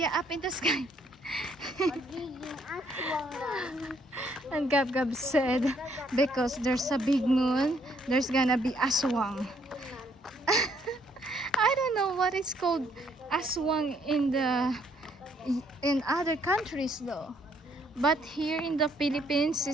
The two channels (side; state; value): both; normal; correlation 0.68